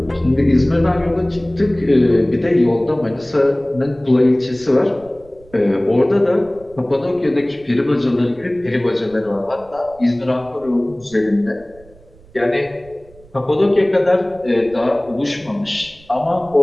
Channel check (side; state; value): right; noise; rumble, 25 dB below the sound